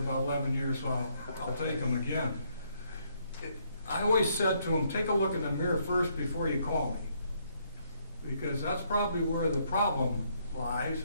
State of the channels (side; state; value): both; inverted; correlation -0.71